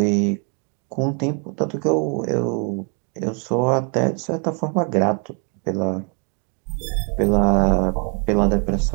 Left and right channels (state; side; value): quieter; left; 37.4 dB